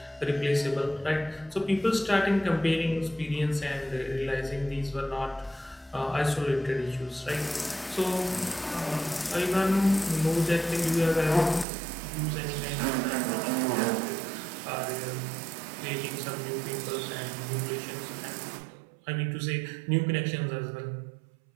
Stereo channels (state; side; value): drops out; left; at 11.7 s